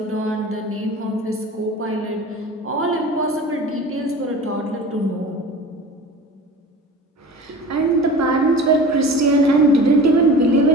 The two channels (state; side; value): normal; both; correlation 0.38